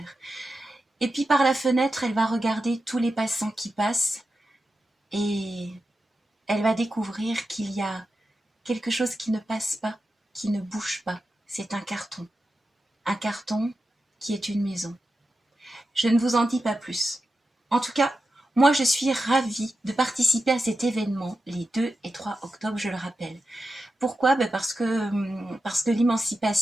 Et puis par la fenêtre, elle va regarder tous les passants qui passent et elle va découvrir qu'il y a quelque chose qui ne passe pas, qui ne bouge pas. C'est un carton. Un carton qui est une maison. Je ne vous en dis pas plus. En tout cas, moi je suis ravie de participer à cet événement les 2 et 3 octobre, je le rappelle. Pourquoi? Parce que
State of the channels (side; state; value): both; normal; correlation 0.91